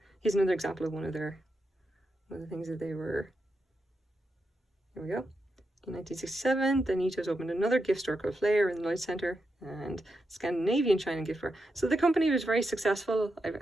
example of one of the things that they were. Here we go. In 1967, the Nitos opened another gift store called Flair in the Lloyd Centre and Scandinavian China gift fair. So the company was very successful. I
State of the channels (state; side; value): normal; both; correlation 0.86